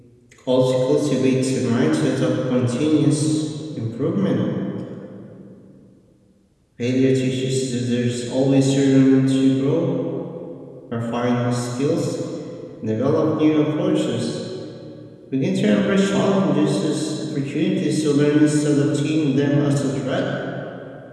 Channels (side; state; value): both; identical; correlation 1.00